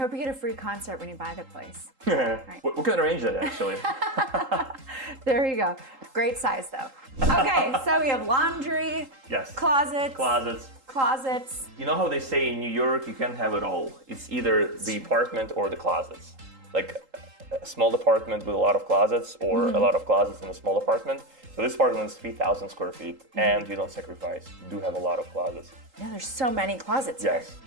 you get a free concert when you buy the place. Right. We can arrange that, actually. There you go. Great size, though. Okay, so we have laundry, yes, closets. You know how they say in New York, you can't have it all. It's either the apartment or the closets. Like a small apartment with a lot of closets, or a lot of closets in a small apartment. So this apartment is 3,000 square feet, and you don't sacrifice. You do have a lot of closets. Yeah, there's so many closets yes. here.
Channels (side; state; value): left; late; 3.8 ms